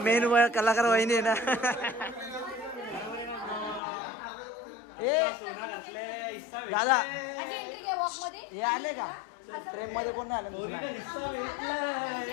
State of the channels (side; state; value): right; drops out; at 3.8 s